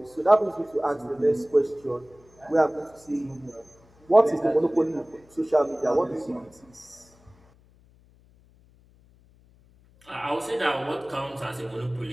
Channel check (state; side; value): noise; left; hum, 29 dB below the sound